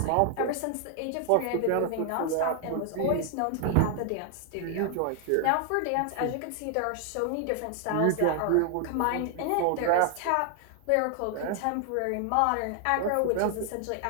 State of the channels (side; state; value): both; different; correlation 0.00